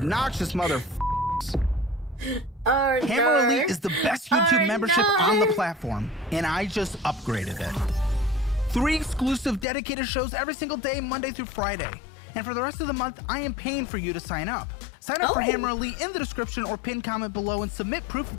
mother. Hammer Elite is the best YouTube membership on the platform, and I just upgraded it. 3 exclusive dedicated shows every single day, Monday through Friday. And for the rest of the month, I am paying for you to sign up. Sign up for Hammer Elite in the description or pinned comment below and submit proof of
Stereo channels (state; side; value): drops out; right; at 9.7 s